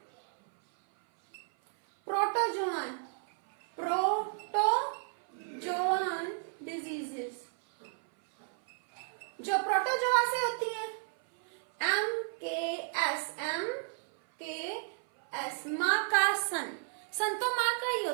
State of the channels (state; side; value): silent; left; 56 dB below the other